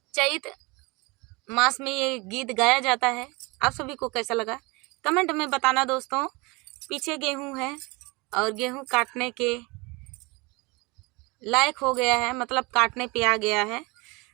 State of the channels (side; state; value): left; quieter; 26.1 dB